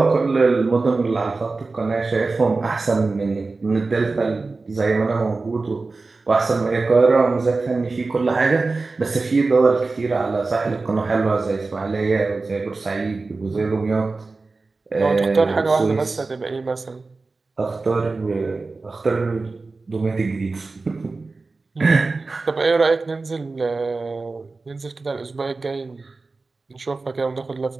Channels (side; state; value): left; quieter; 3.7 dB